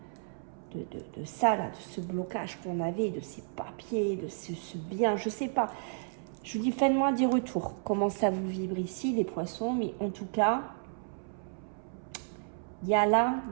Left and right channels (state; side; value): silent; left; 56 dB below the other